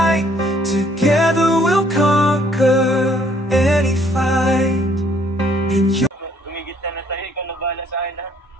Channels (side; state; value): both; normal; correlation 0.63